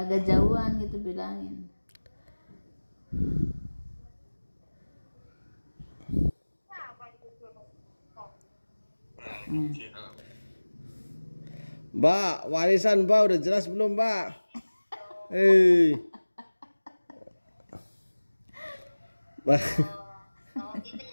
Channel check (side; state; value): both; inverted; correlation -1.00